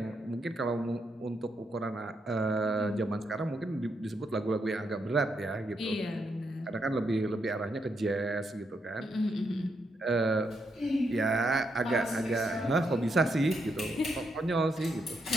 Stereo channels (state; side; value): normal; both; correlation 0.80